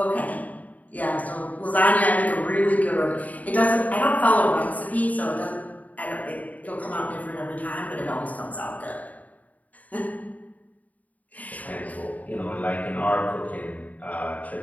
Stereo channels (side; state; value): right; late; 0.074 ms